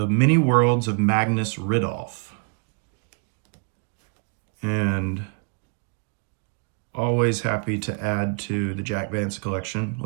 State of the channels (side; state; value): left; quieter; 35.3 dB